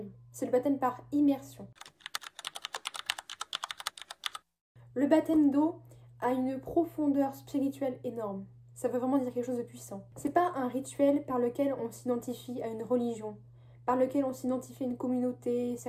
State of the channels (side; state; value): both; identical; correlation 1.00